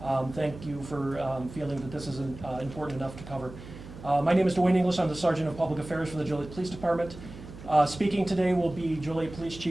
thank you for feeling that this is important enough to cover. My name is Dwayne English. I'm the Sergeant of Public Affairs for the Joliet Police Department. Speaking today will be Joliet Police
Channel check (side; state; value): right; noise; hum, 15 dB below the sound